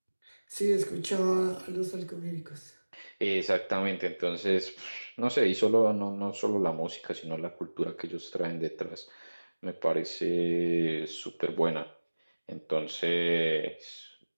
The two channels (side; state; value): both; inverted; correlation -1.00